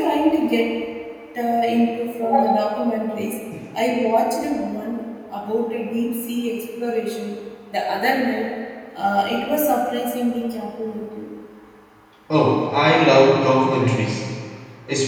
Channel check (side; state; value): both; identical; correlation 1.00